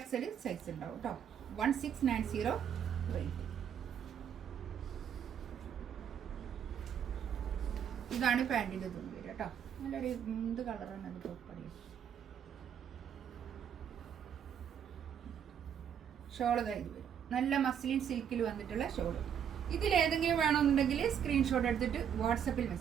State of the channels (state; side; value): quieter; left; 8.5 dB